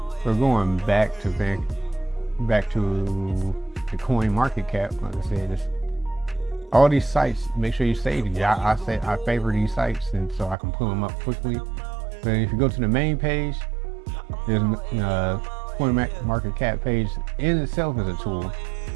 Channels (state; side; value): drops out; left; at 10.6 s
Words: So going back to the coin market cap, like I said, it's all these sites. Make sure you save these. I favor these sites, and so I can pull them up quickly. But if you go to the main page, there's coin market cap page in itself is a tool.